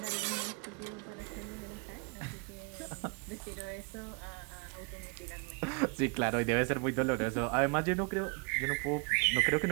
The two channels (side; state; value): left; quieter; 35.2 dB